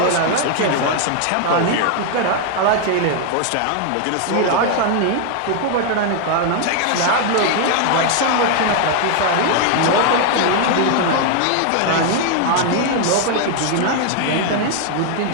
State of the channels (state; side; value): different; both; correlation 0.00